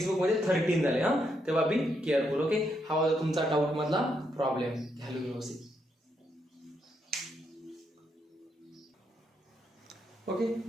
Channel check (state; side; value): normal; both; correlation 0.78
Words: बुक मध्ये 13 झाले हा तेव्हा बी केअरफुल ओके हा होता तुमचा डाऊट मधला प्रॉब्लेम घ्यालो व्यवस्थित ओके